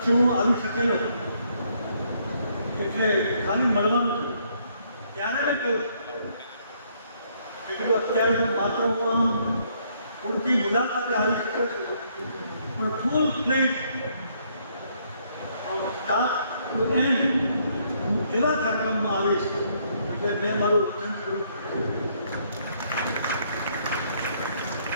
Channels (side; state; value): both; inverted; correlation -0.70